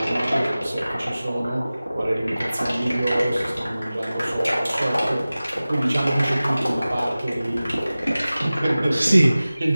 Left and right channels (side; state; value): both; inverted; correlation -0.97